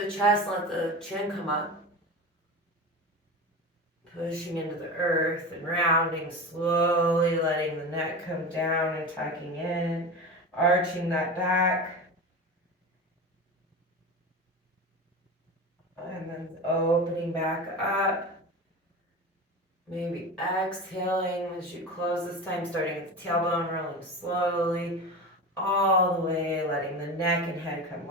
the chest, let the chin come up. Pushing into the earth and rounding slowly, letting the neck come down and tucking in, arching that back. And then opening back up. Maybe exhaling as you close this time, starting at the tailbone, rolling slowly all the way, letting the neck and head come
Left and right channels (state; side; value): normal; both; correlation 0.27